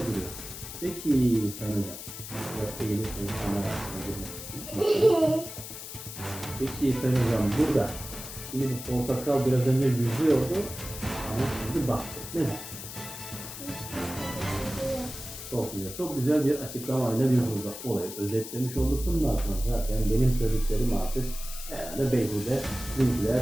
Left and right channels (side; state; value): left; noise; hiss, 10 dB below the sound